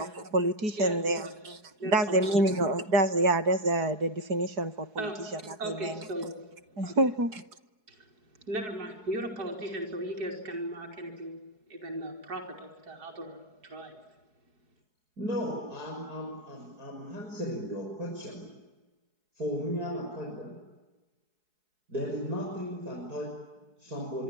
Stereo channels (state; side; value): late; left; 4.7 ms